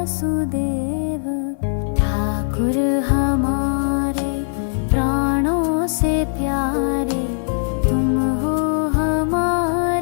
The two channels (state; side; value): silent; right; 64 dB below the other